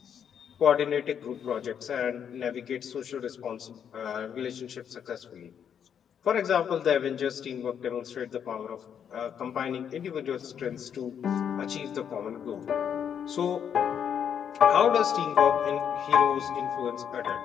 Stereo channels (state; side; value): quieter; right; 8.2 dB